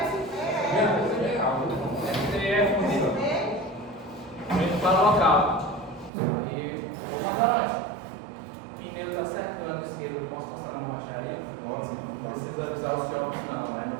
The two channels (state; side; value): drops out; left; at 6.1 s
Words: STF, indo para o local. Aí, comandante, pneu está secando esquerdo, eu posso passar na borracharia? Não precisa avisar os jogos não, mas no